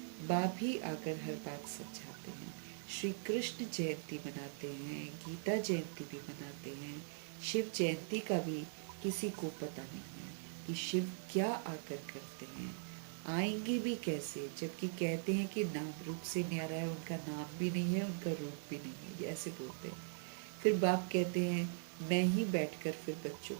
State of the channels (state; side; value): silent; left; digital silence